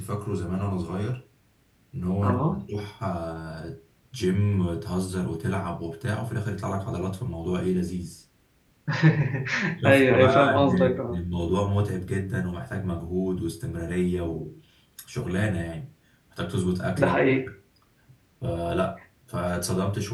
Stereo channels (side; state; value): both; identical; correlation 1.00